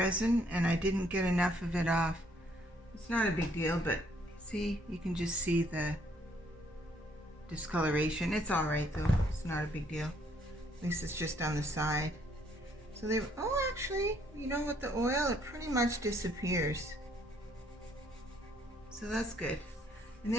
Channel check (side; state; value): both; normal; correlation 0.66